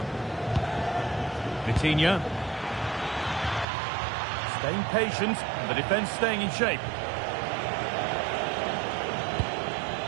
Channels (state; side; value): drops out; left; at 3.7 s